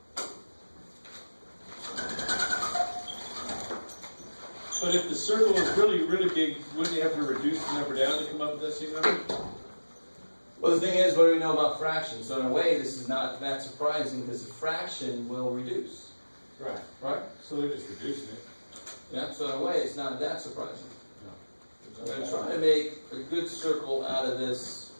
But if the circle is really, really big, wouldn't you have to reduce the number down to come up with that same number? Well, the thing is, what do we know about fractions? So in a way, this is not that surprising because a fraction will reduce. Right. Right? So they're just reducing it. Yeah, so in a way, it's not that surprising. I'm going to try to make a good circle out of this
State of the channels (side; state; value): both; inverted; correlation -1.00